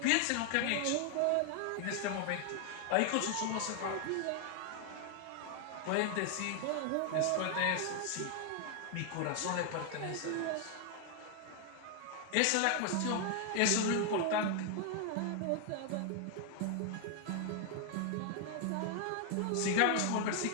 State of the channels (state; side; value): different; both; correlation 0.00